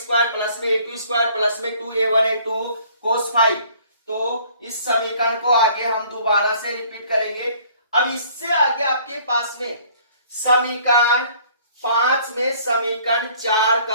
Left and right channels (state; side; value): inverted; both; correlation -0.56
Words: plus में A2 स्क्वायर प्लस में 2A1 A2 कोस फाइव। तो इस समीकरण को आगे हम दोबारा से रिपीट करेंगे। अब इससे आगे आपके पास में समीकरण 5 में समीकरण 4